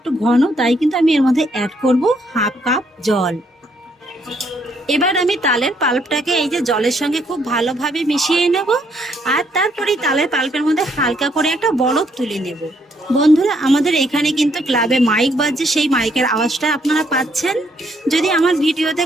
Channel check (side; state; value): both; normal; correlation 0.71